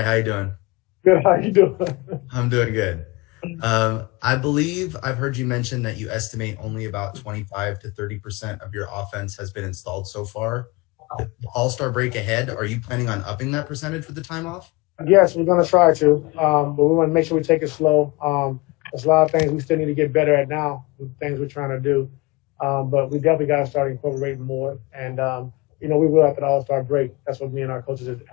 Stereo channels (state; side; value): quieter; right; 24.2 dB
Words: how you doing? Good. How you doing? I'm doing good. I believe I've heard you mention that you estimate only about 25 to 30% of your offense has been installed so far. With the All-Star break ahead, are you planning on upping that percentage with the time off? Yes, we're gonna try to, but we want to make sure we take it slow. There's a lot of things we still need to get better at now. With things we're trying to do, but we definitely got to start incorporating more. And we will after the All-Star break. That's what me and our coaches